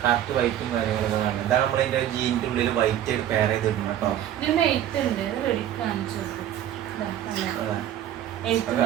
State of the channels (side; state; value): left; quieter; 11.3 dB